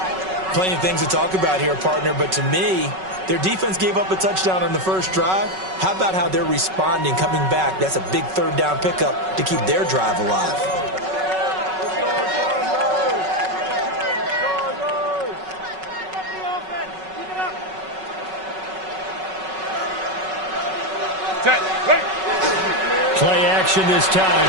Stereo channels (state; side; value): late; left; 5.3 ms